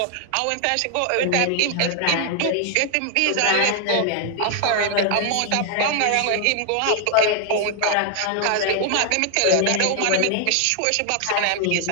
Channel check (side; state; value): both; different; correlation 0.00